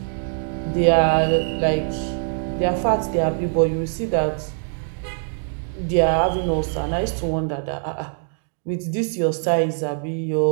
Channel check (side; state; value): left; silent; 61 dB below the other